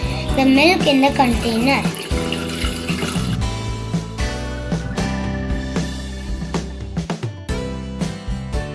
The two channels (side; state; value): both; identical; correlation 1.00